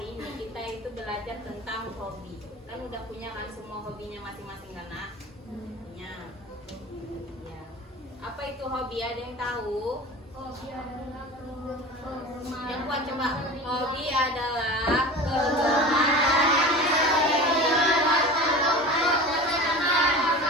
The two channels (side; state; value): both; normal; correlation 0.35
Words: ini kita itu belajar tentang hobi. Kan udah punya kan semua hobinya masing-masing kan, Nak? Punya. Ya. Apa itu hobi? Ada yang tahu? Hobi adalah kegemaran. Yang kuat coba. Hobi adalah kegemaran yang